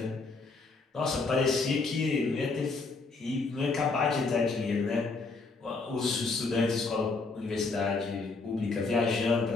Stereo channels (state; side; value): quieter; right; 4.0 dB